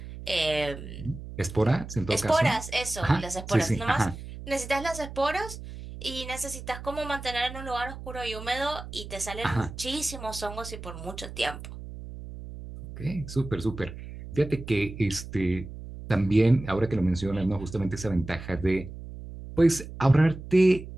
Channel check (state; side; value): noise; right; hum, 12 dB below the sound